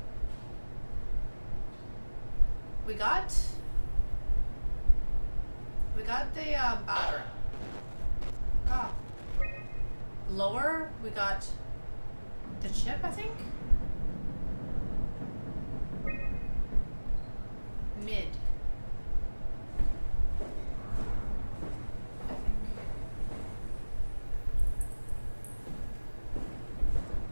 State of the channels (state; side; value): inverted; both; correlation -1.00